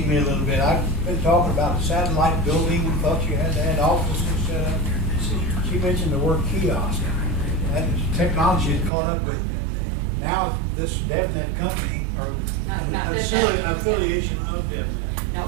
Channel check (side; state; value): left; drops out; at 8.9 s